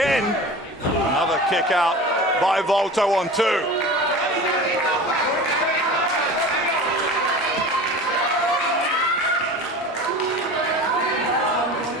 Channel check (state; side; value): normal; both; correlation 0.35